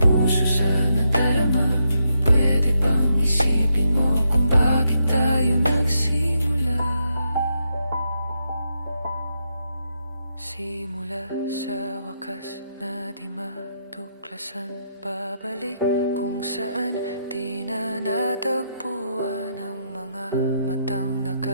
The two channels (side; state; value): both; inverted; correlation -0.81